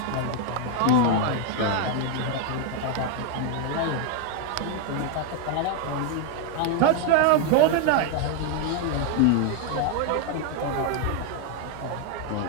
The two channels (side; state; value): both; different; correlation 0.01